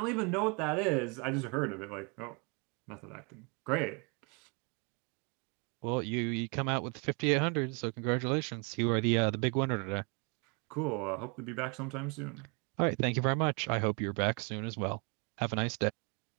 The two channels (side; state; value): left; quieter; 33.8 dB